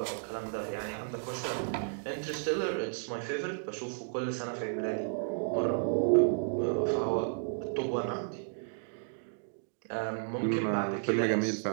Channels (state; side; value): silent; left; digital silence